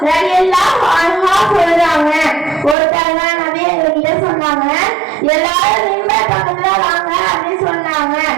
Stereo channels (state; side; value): drops out; left; at 2.8 s